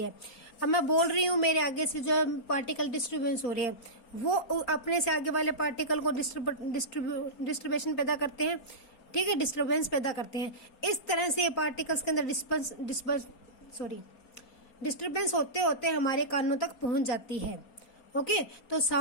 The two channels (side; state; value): right; late; 4.3 ms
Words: है। अब मैं बोल रही हूँ, मेरे आगे से जो पार्टिकल डिस्टर्बेंस हो रहे हैं वो अपने से आगे वाले पार्टिकल को डिस्टर्बेशन पैदा करते हैं। ठीक है, डिस्टर्बेंस पैदा करते हैं। इस तरह से पार्टिकल्स के अंदर डिस्टर्बेंस होते होते हमारे कानों तक पहुंच जाती है। ओके, तो